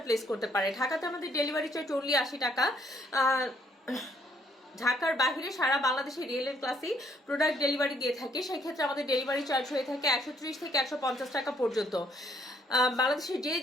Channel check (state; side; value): normal; both; correlation 0.68